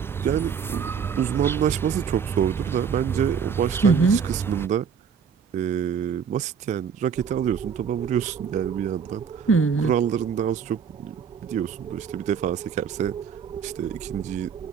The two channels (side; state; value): left; quieter; 6.9 dB